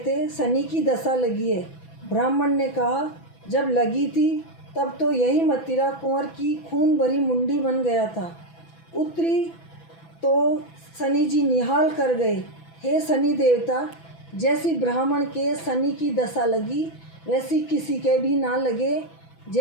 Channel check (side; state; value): right; late; 6.0 ms